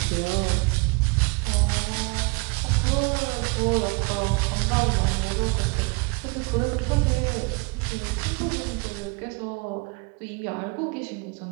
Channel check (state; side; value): quieter; left; 26.8 dB